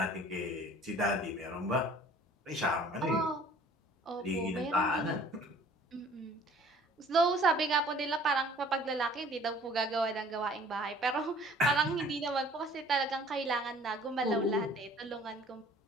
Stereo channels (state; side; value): normal; both; correlation 0.52